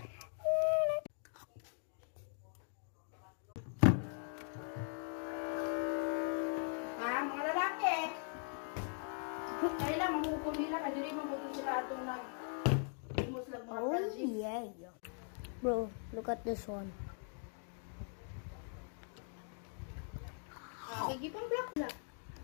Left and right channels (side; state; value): right; silent; 51 dB below the other